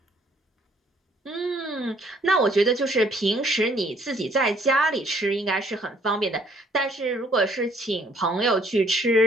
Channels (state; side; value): normal; both; correlation 0.63